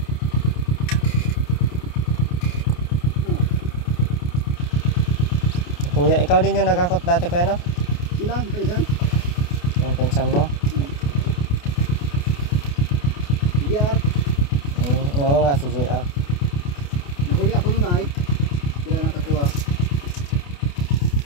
Kuya, ikaw din yung nagakot dati, kuya, no? Ilan? Paisan? Yung pinsan mo? JR. Oo nga, si JR. Nahuli ako nun ay. Sila nakakuha.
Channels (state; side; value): late; right; 28 ms